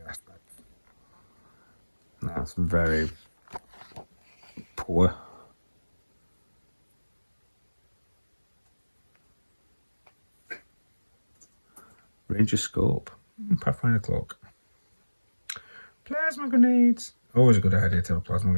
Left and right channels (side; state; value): both; inverted; correlation -1.00